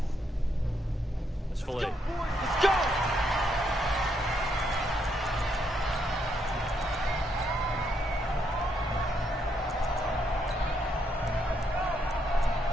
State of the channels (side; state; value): both; normal; correlation 0.76